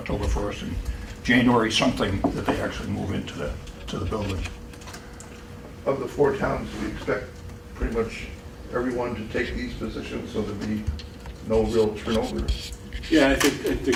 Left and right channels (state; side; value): identical; both; correlation 1.00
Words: 1st and January something that they actually move into the building. Of the 4 towns, we expect pretty much everyone to take these positions, so there'll be no real turnover. Yeah, I